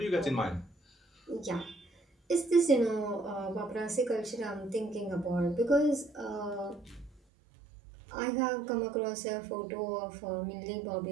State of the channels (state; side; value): drops out; left; at 7.2 s